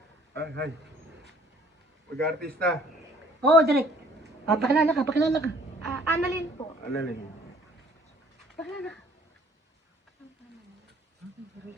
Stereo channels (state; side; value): normal; both; correlation 0.57